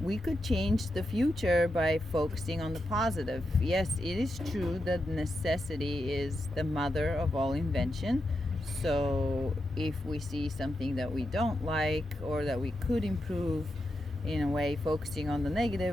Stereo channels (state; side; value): normal; both; correlation 0.86